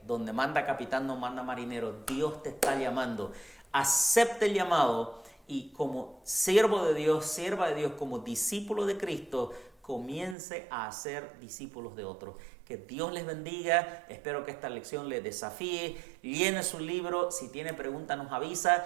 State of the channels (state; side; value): drops out; left; at 10.4 s